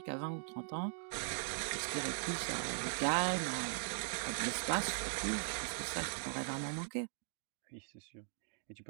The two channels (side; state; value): left; silent; digital silence